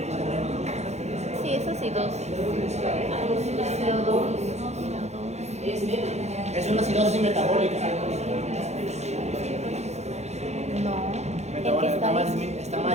sí, es acidosis. CO2. Es una acidosis metabólica. No. Metabólica está más disminuido está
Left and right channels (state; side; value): late; left; 0.32 ms